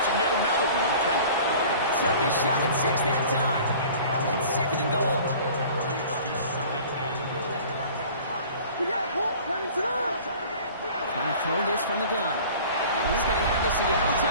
yet another one count. Took his shot at 6 that time. It's 2nd and goal. Trying to throw this from the gun. And he's going to have the Seattle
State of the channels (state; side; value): inverted; both; correlation -0.45